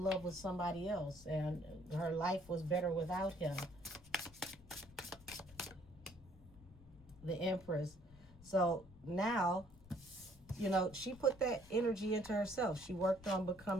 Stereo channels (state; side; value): noise; left; rumble, 21 dB below the sound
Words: love with somebody else and her life was better without him. The Empress. So now, you know, she put that energy into herself. She worked on